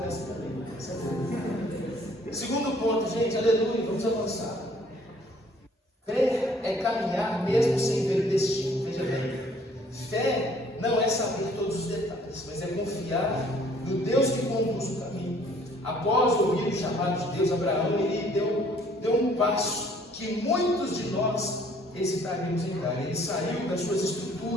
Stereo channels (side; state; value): both; normal; correlation 0.59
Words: essa também. Segundo ponto, gente, aleluia, vamos avançar. Fé é caminhar mesmo sem ver o destino. Veja bem. Fé não é saber todos os detalhes, mas é confiar no Deus que conduz o caminho. Após ouvir o chamado de Deus, Abraão ele deu um passo que muitos de nós hesitaríamos em dar. Ele saiu das suas